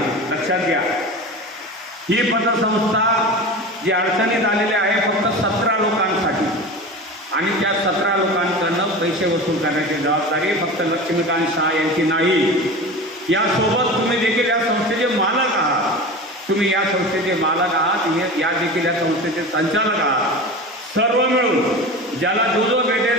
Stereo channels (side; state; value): both; normal; correlation 0.31